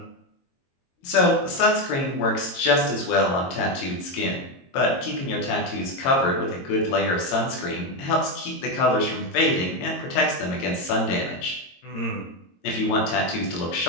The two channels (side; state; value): right; late; 22 ms